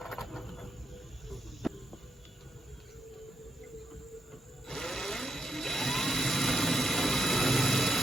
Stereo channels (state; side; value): normal; both; correlation 0.81